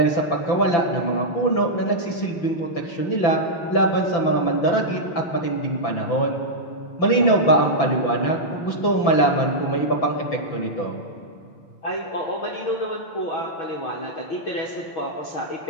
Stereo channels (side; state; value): right; late; 5.9 ms